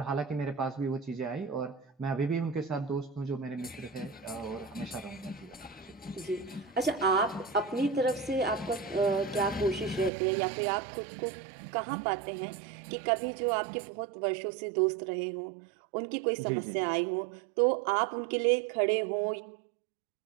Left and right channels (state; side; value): drops out; left; at 10.1 s